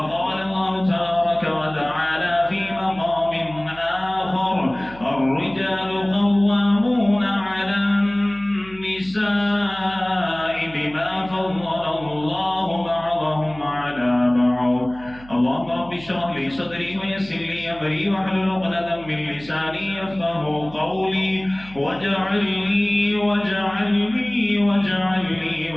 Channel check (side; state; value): right; noise; hum, 20 dB below the sound